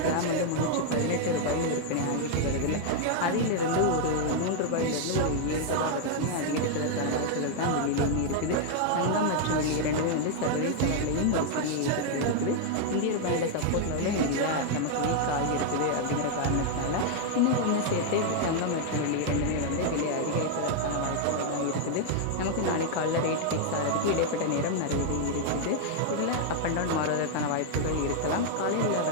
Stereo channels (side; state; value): both; different; correlation 0.00